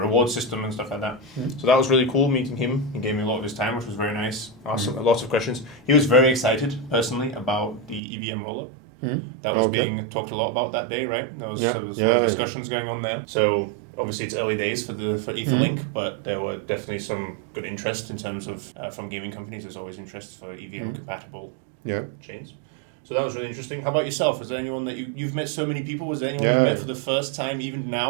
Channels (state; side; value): drops out; left; at 8.0 s